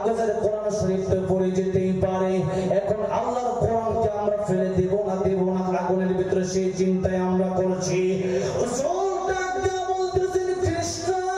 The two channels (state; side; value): noise; right; hum, 25 dB below the sound